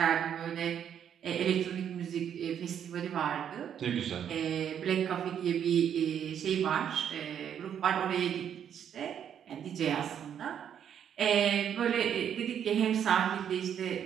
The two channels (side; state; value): left; quieter; 8.9 dB